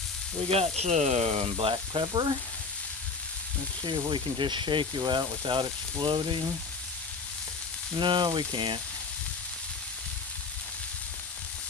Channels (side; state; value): right; quieter; 4.3 dB